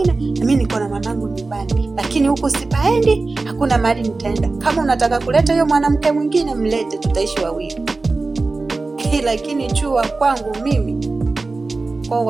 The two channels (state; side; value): quieter; left; 3.6 dB